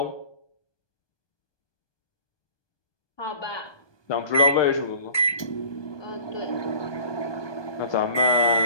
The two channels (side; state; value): right; late; 1.2 ms